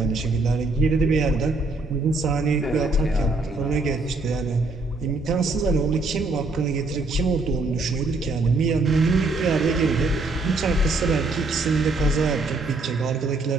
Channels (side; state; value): left; quieter; 3.2 dB